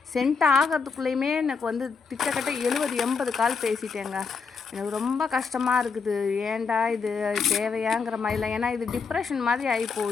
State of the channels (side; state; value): right; quieter; 5.3 dB